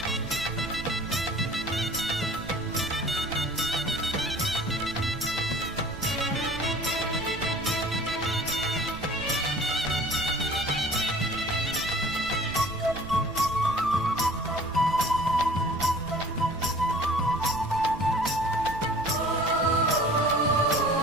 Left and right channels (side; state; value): right; noise; rumble, 14 dB below the sound